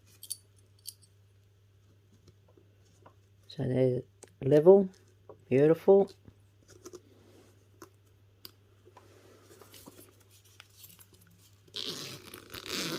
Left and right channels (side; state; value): both; identical; correlation 1.00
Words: So they're level, beautiful.